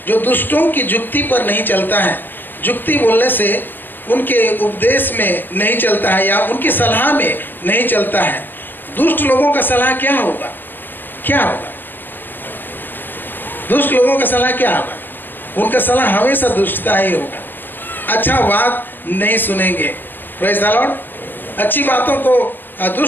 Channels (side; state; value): right; late; 0.094 ms